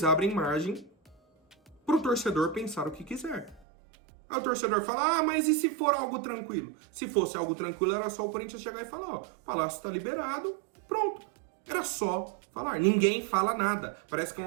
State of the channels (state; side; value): drops out; left; at 3.7 s